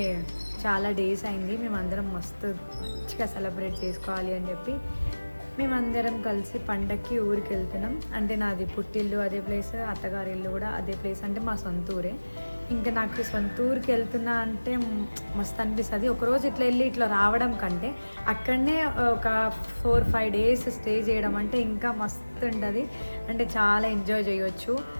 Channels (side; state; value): both; inverted; correlation -1.00